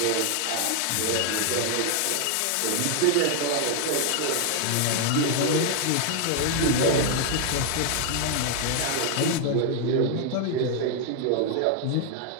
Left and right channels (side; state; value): both; different; correlation 0.00